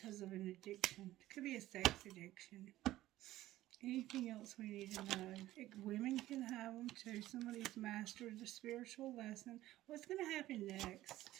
of an addiction. It could be a sex addiction. Anything else we need to know? Women can have them too. Somebody's mastered the spiritual lesson. What's going to happen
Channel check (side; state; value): left; quieter; 15.3 dB